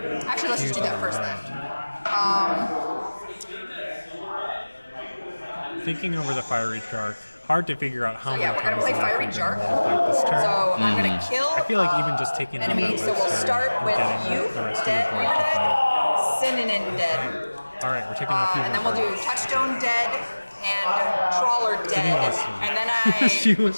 Actually, let's just do used that on first the then. Thinking over the Fiery Shark, hard to figure out how So many yeah, we're gonna times play left Fiery we're gonna Shark. fight this turn. So I'm gonna kill. I feel like even just taking out enemy. that So we'll Webster start and with getting you, the rest of dead, the board to fight. Synonym dead, Alright, we're taking out a few and then more we'll do cards. Touchstone dead and Trawler dead, wants to- and then I she like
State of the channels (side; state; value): both; inverted; correlation -1.00